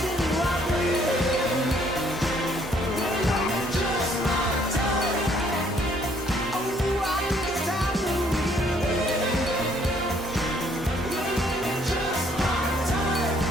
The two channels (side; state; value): both; normal; correlation 0.65